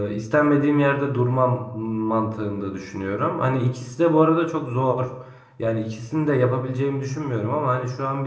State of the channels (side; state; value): both; identical; correlation 1.00